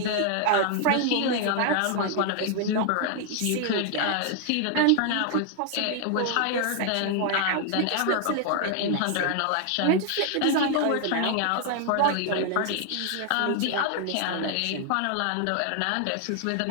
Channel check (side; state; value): both; different; correlation 0.00